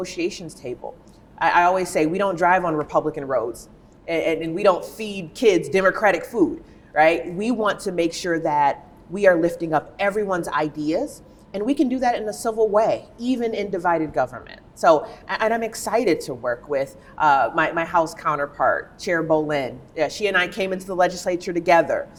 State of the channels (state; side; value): identical; both; correlation 1.00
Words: table. I always say we don't drive on Republican roads and we don't feed kids Democratic food, right? We want to make sure that we are lifting up everyone's ideas, and we can do that in a civil way, even in divided government. So, and I'm excited to work with my House counterpart, Chair Bolin. She and I came into the legislature together.